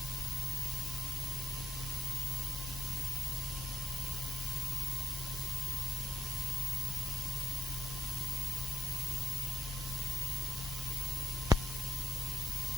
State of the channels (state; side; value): normal; both; correlation 0.80